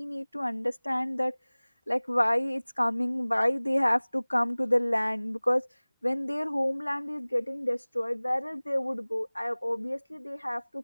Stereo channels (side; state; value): both; inverted; correlation -1.00